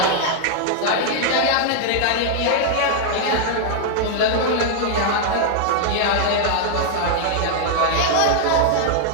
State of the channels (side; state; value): both; different; correlation -0.01